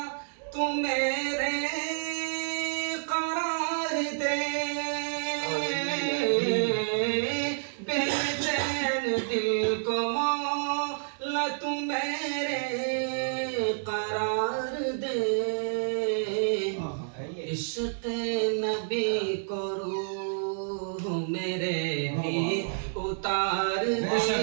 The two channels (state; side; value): silent; left; digital silence